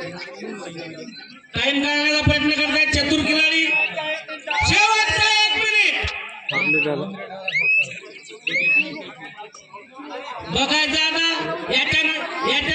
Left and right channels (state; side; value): identical; both; correlation 1.00